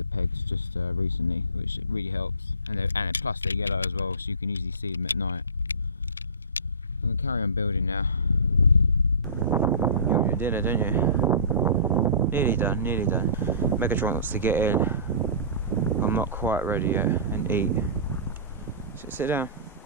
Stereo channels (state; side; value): inverted; both; correlation -0.35